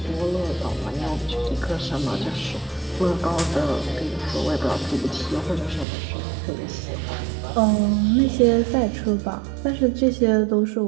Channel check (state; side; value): drops out; left; at 5.9 s